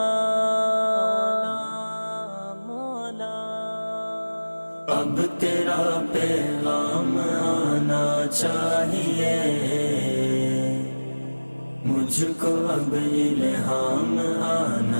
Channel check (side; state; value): both; inverted; correlation -1.00